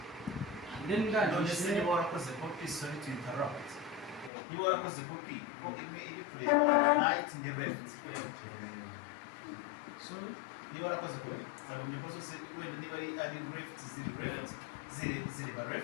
then ndangije niba warakoze copy sorry to interrupt niba warakoze copy imwe iri kureba right in the left sorry niba warakoze copy sagomye ko zose wenda niba ari left ziri ba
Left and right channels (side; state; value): right; drops out; at 4.3 s